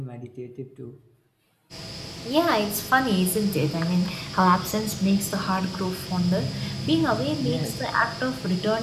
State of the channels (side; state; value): both; identical; correlation 1.00